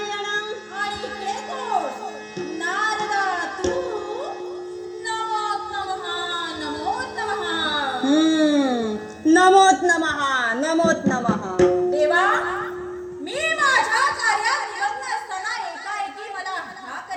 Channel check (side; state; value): both; identical; correlation 1.00